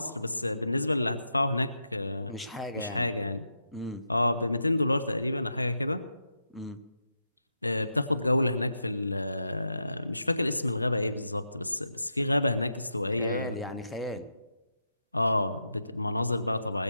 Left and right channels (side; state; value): both; inverted; correlation -0.85